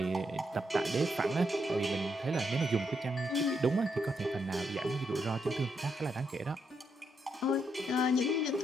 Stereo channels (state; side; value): normal; both; correlation 0.79